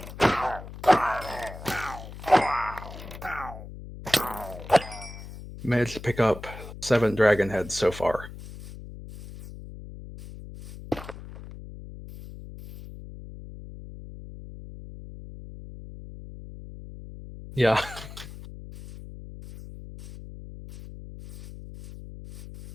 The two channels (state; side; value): noise; left; hum, 13 dB below the sound